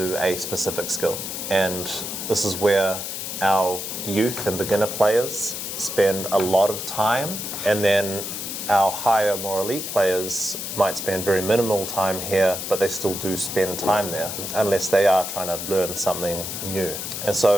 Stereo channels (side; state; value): left; noise; hiss, 6 dB below the sound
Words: a specific skill. And this is where our youth and beginner players spend a lot of time, and then our higher, more elite players might spend very minimal time here, but they still do spend time there, unless they are trying to learn something new. And